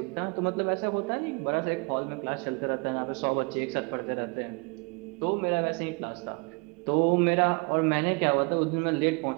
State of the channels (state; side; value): quieter; left; 31.2 dB